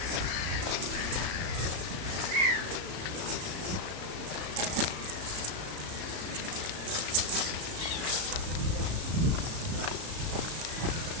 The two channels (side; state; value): left; late; 34 ms